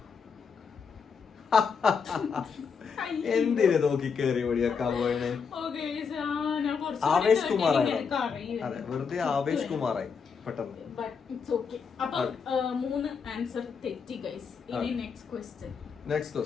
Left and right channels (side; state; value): right; quieter; 6.0 dB